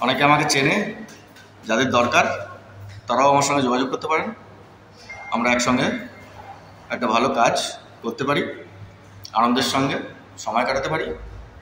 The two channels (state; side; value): identical; both; correlation 1.00